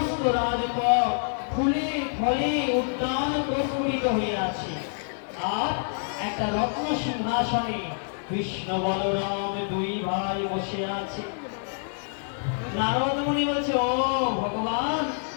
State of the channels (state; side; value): silent; right; digital silence